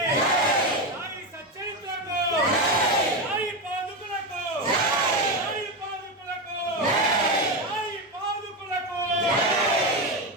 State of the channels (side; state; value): both; normal; correlation 0.13